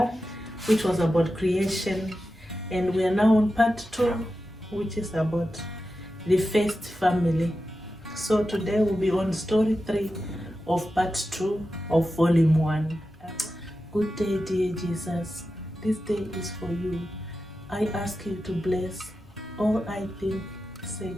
which was about creation, and we are now on part 2, which is about the first family. So today we'll be on story 3 of part 2 of volume 1. Good day, dear Jesus. This day is for you. I ask you to bless all I think, say,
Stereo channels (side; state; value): both; normal; correlation 0.91